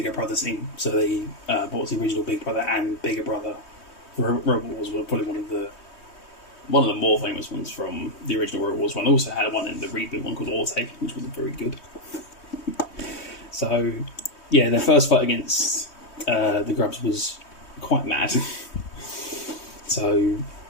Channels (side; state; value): right; late; 3.2 ms